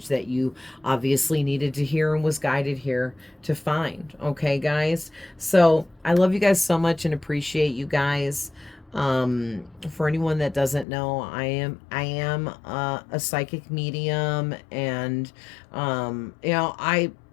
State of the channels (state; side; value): drops out; right; at 10.9 s